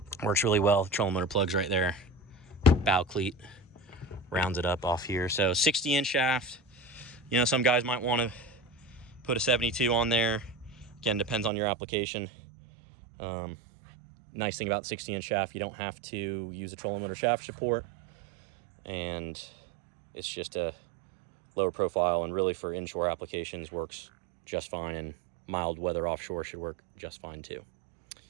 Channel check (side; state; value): left; drops out; at 11.5 s